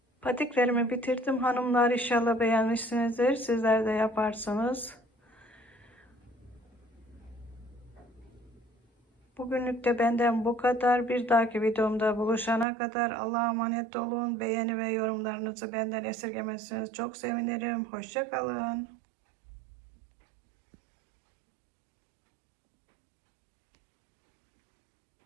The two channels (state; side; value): drops out; left; at 12.7 s